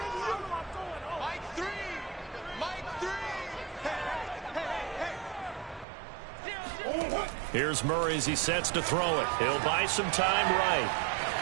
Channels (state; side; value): drops out; left; at 5.9 s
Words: you. Mike 3. Mike 3. Hey. Here's Murray as he sets to throw it. He'll buy some time right.